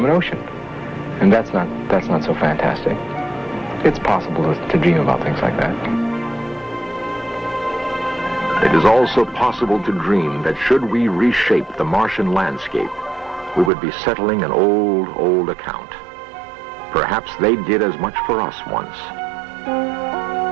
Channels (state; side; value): drops out; left; at 13.7 s